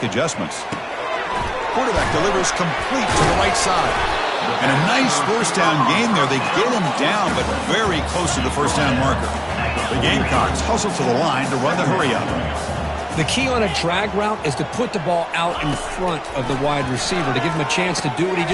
adjustments. Quarterback delivers complete to the right side. And a nice first down game there. They get him down, but very close to the first down marker. The Gamecocks hustle to the line to run the hurry-up. The key on a drag route is to put the ball out in front of the wide receiver to give him a chance to do what he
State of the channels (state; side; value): identical; both; correlation 1.00